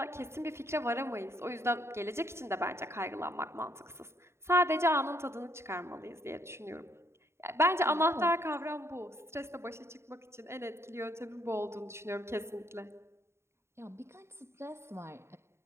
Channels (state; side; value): late; left; 0.13 ms